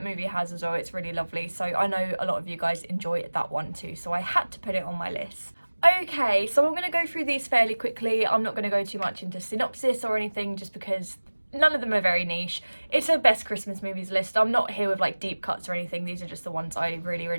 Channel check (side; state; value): both; inverted; correlation -1.00